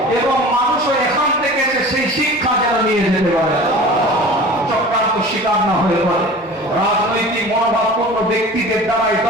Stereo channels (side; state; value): both; normal; correlation 0.40